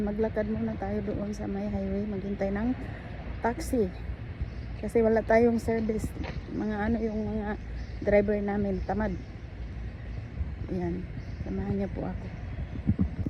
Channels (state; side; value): identical; both; correlation 1.00